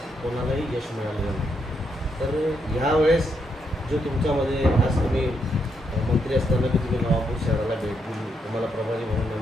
कोणालाही यश मिळालेलं नाही. तर ह्यावेळेस जो तुमच्यामध्ये आज तुम्ही मंत्री असताना की तुम्ही नवापूर शहराला भेट दिली, तुम्हाला प्रभारी म्हणून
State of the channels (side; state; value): both; normal; correlation 0.79